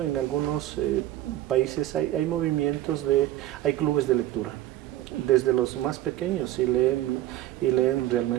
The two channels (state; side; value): quieter; left; 14.3 dB